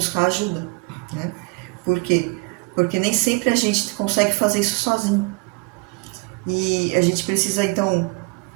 ajuda, né? Por quê? Porque nem sempre a gente consegue fazer isso sozinho. E a gente precisa, então,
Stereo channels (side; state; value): left; quieter; 30.1 dB